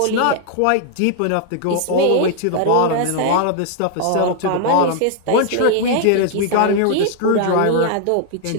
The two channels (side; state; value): both; different; correlation 0.00